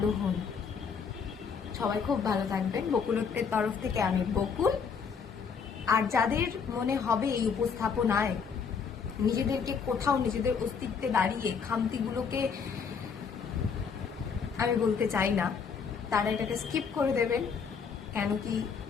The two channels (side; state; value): right; quieter; 6.1 dB